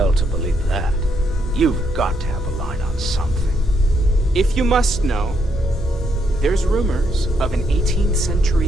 to believe that. You've got to have a line on something. If you must know, there's rumors of an 18th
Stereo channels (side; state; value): both; normal; correlation 0.75